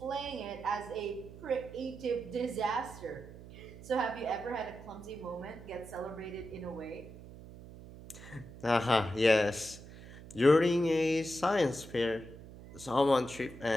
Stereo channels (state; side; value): noise; right; hum, 16 dB below the sound